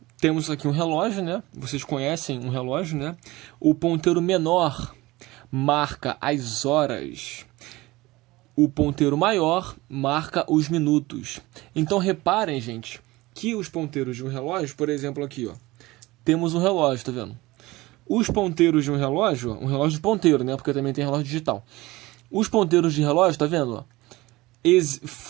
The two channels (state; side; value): quieter; left; 20.0 dB